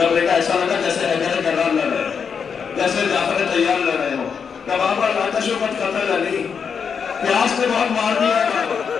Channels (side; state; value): right; quieter; 6.5 dB